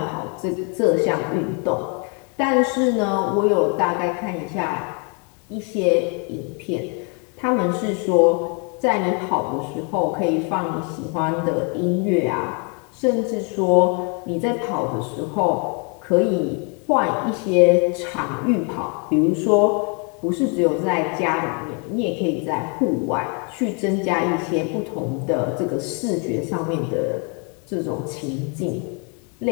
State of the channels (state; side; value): quieter; right; 36.2 dB